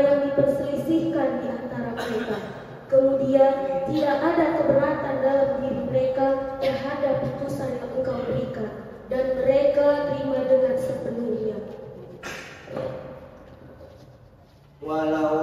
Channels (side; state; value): both; identical; correlation 1.00